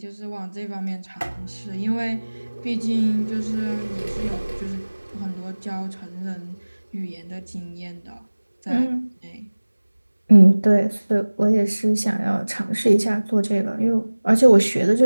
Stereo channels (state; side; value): inverted; both; correlation -1.00